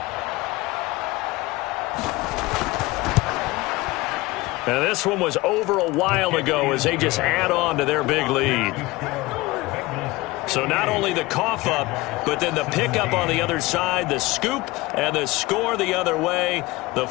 And this one was over a while ago as they just add on to their big lead. So not only the cough up, but then the pickup on the other side, the scoop, and the score the other way, the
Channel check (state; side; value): quieter; right; 20.9 dB